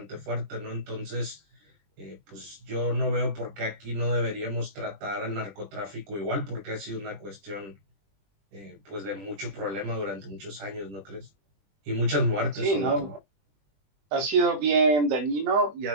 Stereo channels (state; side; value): late; left; 20 ms